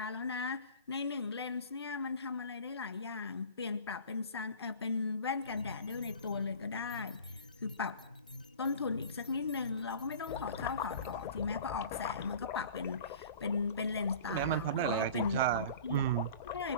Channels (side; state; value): both; inverted; correlation -0.40